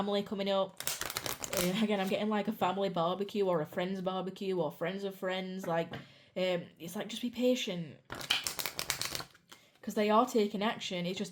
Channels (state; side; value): identical; both; correlation 1.00